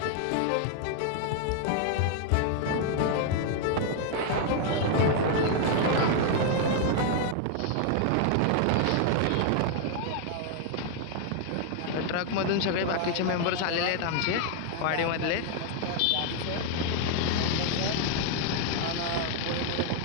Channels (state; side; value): different; both; correlation 0.00